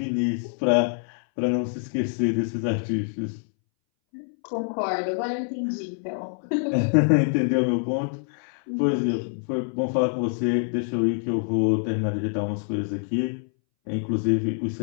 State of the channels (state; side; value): silent; right; 61 dB below the other